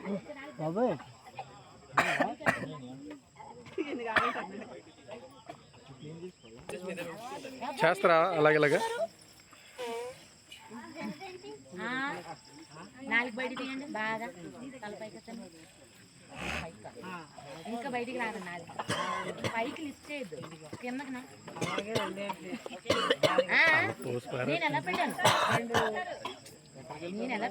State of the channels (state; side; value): identical; both; correlation 1.00